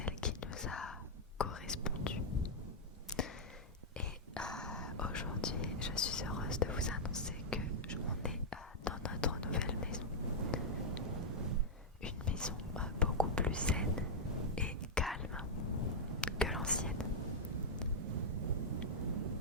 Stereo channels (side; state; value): both; normal; correlation -0.06